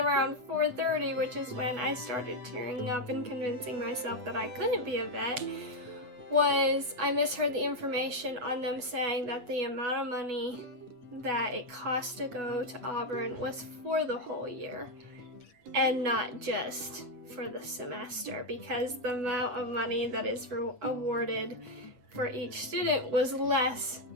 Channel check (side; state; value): left; late; 8.2 ms